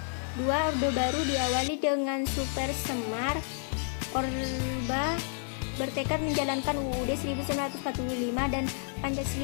2. Orde Baru diawali dengan Super Semar. Orba bertekad menjalankan UUD 1945 dan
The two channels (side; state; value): right; silent; 58 dB below the other